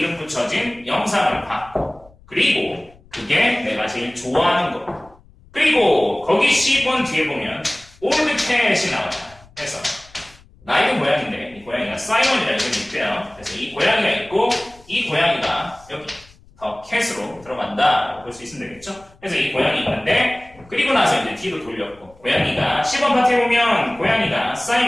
붙여진 영상을 봤고 그리고 그게 내가 제일 좋아하는 거 그리고 거기 10번 뒤에 보면 올드 캣이 나와요. 그래서 나이도 고양인데 이 고양이가 사이먼이라는 이름이 있대요. 그래서 이 고양이가 있고 이 고양이가 여기 더 캣으로 들어간다라고 볼 수 있으면 되겠죠. 그래서 이 고양이 있는데 그리고 나서 이제 뒤로 돌렸고 고양이가 10번 파트에 보면 고양이가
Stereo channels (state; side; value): noise; left; rumble, 26 dB below the sound